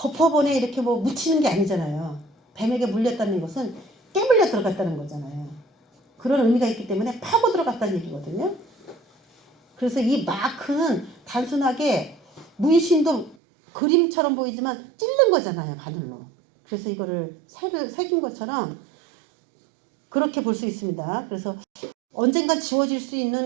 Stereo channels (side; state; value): left; drops out; at 13.4 s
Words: 이렇게 뭐 묻히는 게 아니잖아요. 뱀에게 물렸다는 것은 깨물려 들어갔다는 거잖아요. 그런 의미가 있기 때문에 파고 들어갔다는 얘기거든요. 그래서 이 마크는 단순하게 문신도 그림처럼 보이지만 찔른 거잖아요. 바늘로. 그래서 이거를 새긴 것처럼 그렇게 볼 수 있습니다. 그래서 언젠가 지워질 수